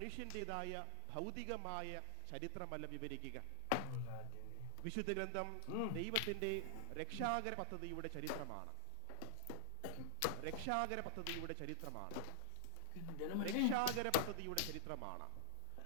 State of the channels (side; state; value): both; different; correlation 0.00